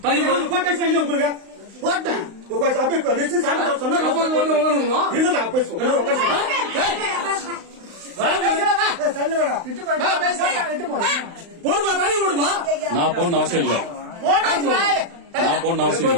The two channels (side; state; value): left; late; 35 ms